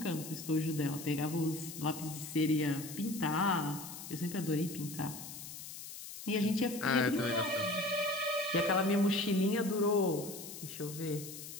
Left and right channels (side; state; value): left; noise; hiss, 11 dB below the sound